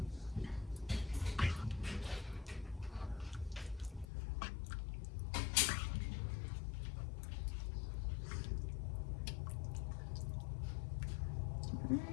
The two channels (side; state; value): right; drops out; at 4.0 s